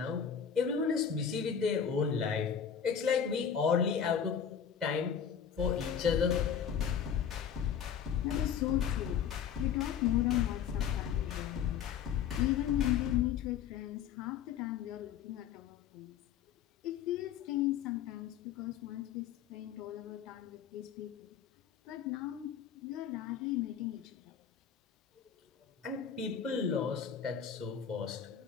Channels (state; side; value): quieter; right; 8.0 dB